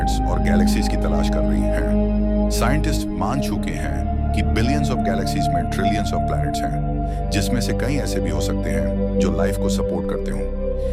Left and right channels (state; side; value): identical; both; correlation 1.00